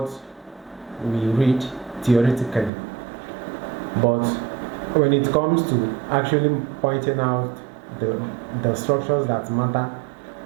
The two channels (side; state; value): left; drops out; at 2.7 s